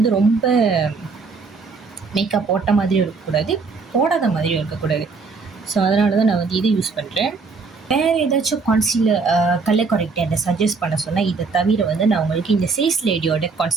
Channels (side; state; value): left; quieter; 4.5 dB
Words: ரொம்ப மேக்கப் போட்ட மாதிரியும் இருக்கக்கூடாது, போடாத மாதிரியும் இருக்கக்கூடாது. ஸோ அதனால தான் நான் வந்து இதை யூஸ் பண்ணுறேன். வேறு ஏதாச்சும் கான்சீலர் கலர் கரெக்டாக என்னை சஜஸ்ட் பண்ண சொன்னால் இதை தவிர வந்து நான் உங்களுக்கு இந்த சேஸ் லேடியோட